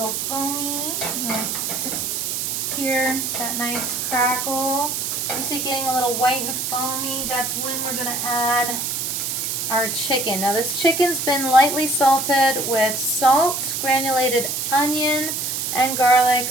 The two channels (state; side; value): noise; right; hiss, 2 dB below the sound